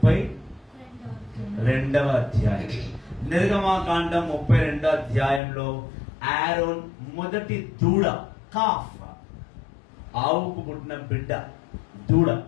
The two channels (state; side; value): drops out; right; at 5.4 s